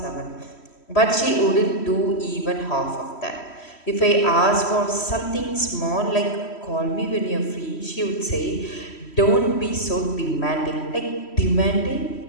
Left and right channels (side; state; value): right; late; 3.1 ms